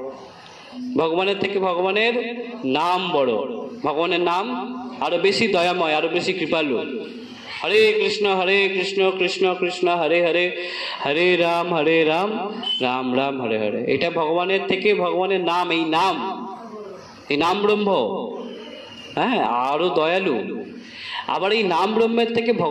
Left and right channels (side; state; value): both; identical; correlation 1.00